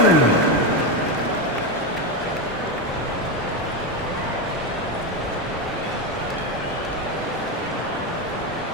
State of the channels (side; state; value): both; normal; correlation 0.12